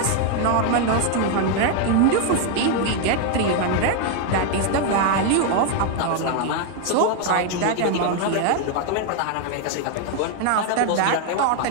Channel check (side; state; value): both; different; correlation 0.01